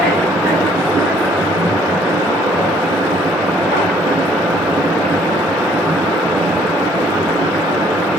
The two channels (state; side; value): normal; both; correlation 0.61